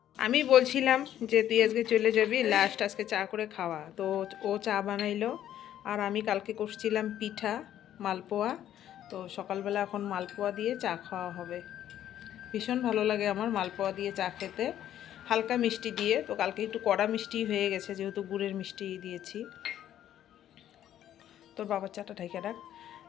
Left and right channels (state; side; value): quieter; right; 11.4 dB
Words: আমি বলছিলাম যে তুই আজকে চলে যাবি, লাস্ট আজকে চা করে খাওয়া। তো ও চা বানাইলো, আর আমি কালকে করছিলাম পিঠা, মালপোয়া। তো সকালবেলা এখন মালপোয়া দিয়ে চা খাওয়া হবে। ভীষণ ভালো লাগে আমার মালপোয়া দিয়ে চা খেতে, হালকা মিষ্টি দিয়ে। তো কালকে একটু কড়া মিষ্টি হয়ে গেছে, যেহেতু গুড়ের মিষ্টি দিয়েছি। তোর বাবার চাটা ঢেকে রাখ।